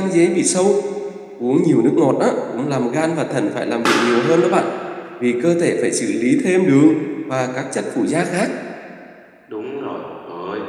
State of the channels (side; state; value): both; identical; correlation 1.00